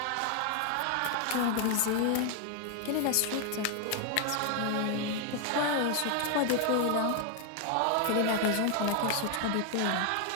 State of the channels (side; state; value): both; different; correlation 0.00